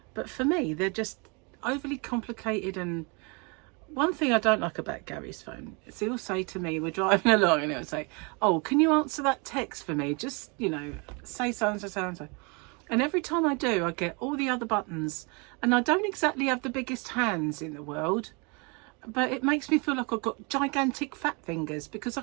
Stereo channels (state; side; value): quieter; left; 31.3 dB